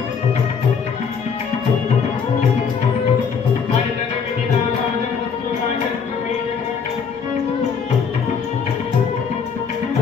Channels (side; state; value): right; quieter; 6.2 dB